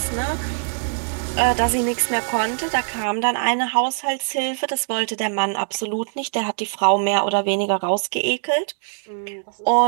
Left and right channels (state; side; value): silent; left; digital silence